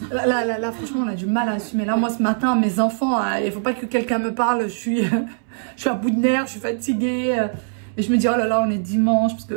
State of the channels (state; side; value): silent; left; 65 dB below the other